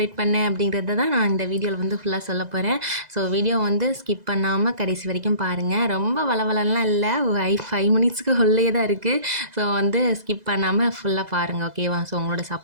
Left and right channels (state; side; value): late; left; 2.0 ms